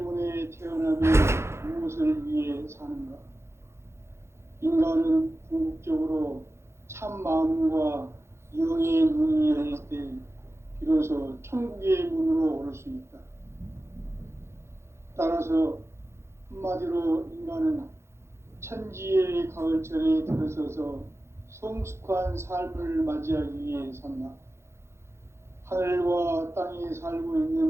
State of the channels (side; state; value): left; late; 0.13 ms